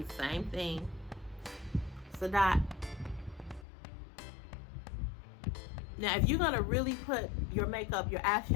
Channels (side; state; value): right; drops out; at 3.7 s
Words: same thing. It's a dot. Now, if you're gonna really put your makeup, your